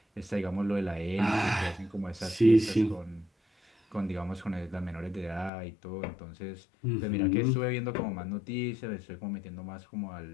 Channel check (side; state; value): right; drops out; at 5.5 s